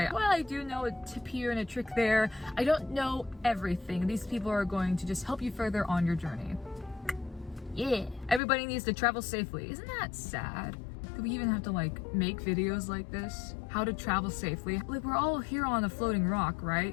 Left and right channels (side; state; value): right; drops out; at 8.4 s